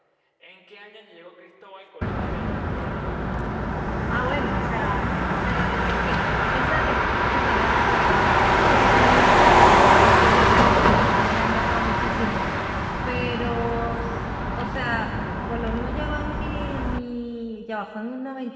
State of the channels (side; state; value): both; identical; correlation 1.00